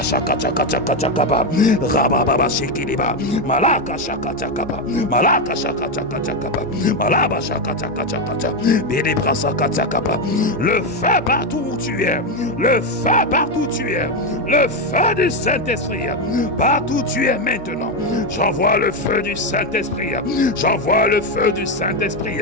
shaka chaka chaka chakaba, rababa shikiliba, malaka shaka chakaba, malaka shaka chaka chakaba, malaba shaka chaka chaka, bidi brasaka chakaba. Le feu partout où tu es, le feu partout où tu es, le feu du Saint-Esprit, partout où tu es maintenant. J'envoie le feu du Saint-Esprit, j'envoie le feu du Saint-Esprit,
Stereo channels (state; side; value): noise; right; hum, 19 dB below the sound